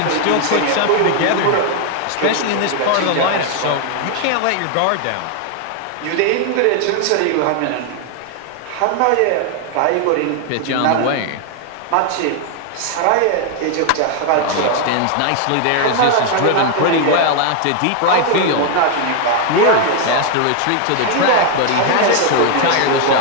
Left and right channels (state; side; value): different; both; correlation 0.00